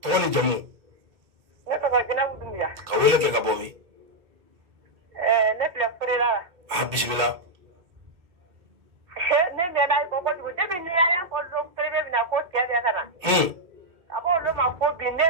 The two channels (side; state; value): left; late; 2.3 ms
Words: to ni jamu ne to wajina budumya ka wele ke ka bomi ne bla furela aha bismillah ne be dai ko ko de bi ni ya ko do prebe bi na ko tia ya kana abo lo ma ko bi ne